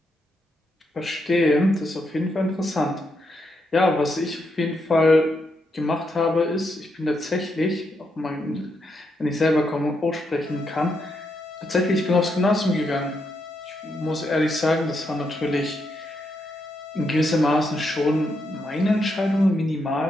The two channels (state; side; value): normal; both; correlation 0.80